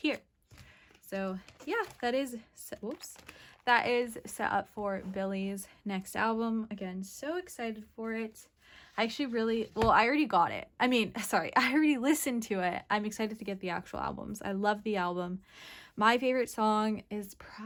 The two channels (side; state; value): both; identical; correlation 1.00